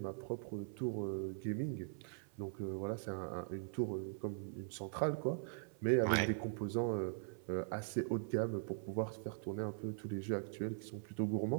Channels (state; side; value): silent; left; 50 dB below the other